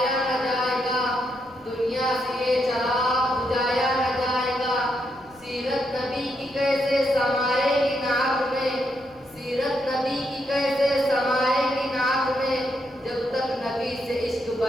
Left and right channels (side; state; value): left; noise; rumble, 29 dB below the sound